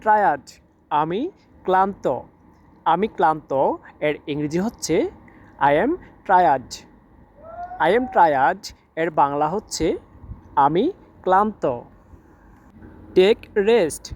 টায়ার্ড, আমি ক্লান্ত। আমি ক্লান্ত এর ইংরেজি হচ্ছে I am tired. I am tired এর বাংলা হচ্ছে আমি ক্লান্ত। টেক রেস্ট,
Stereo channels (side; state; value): both; identical; correlation 1.00